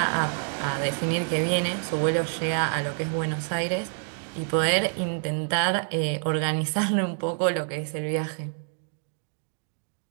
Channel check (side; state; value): left; silent; 60 dB below the other